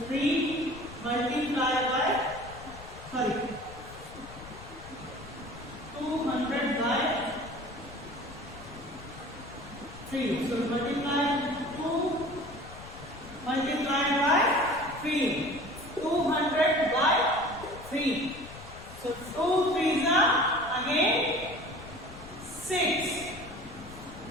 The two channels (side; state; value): left; noise; rumble, 16 dB below the sound